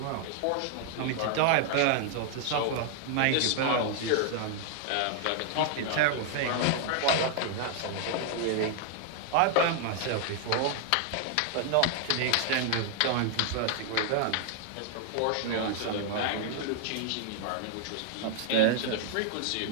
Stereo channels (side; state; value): both; different; correlation 0.00